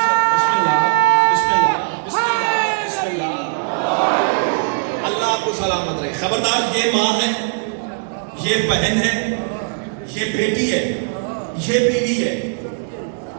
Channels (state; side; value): silent; left; digital silence